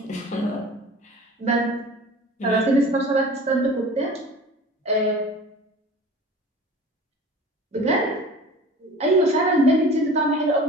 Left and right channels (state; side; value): normal; both; correlation 0.41